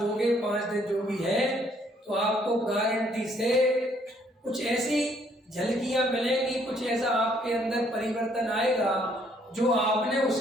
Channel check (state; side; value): normal; both; correlation 0.66